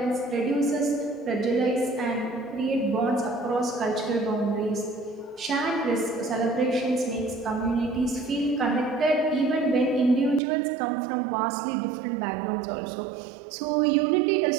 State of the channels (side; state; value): left; drops out; at 10.4 s